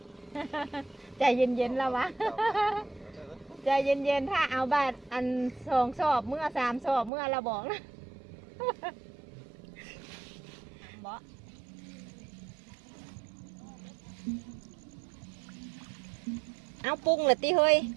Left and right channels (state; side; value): drops out; left; at 7.1 s